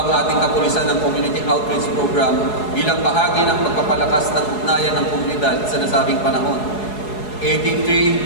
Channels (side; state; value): right; late; 4.7 ms